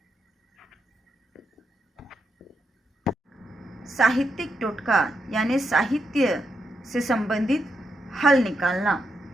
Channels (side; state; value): both; normal; correlation 0.83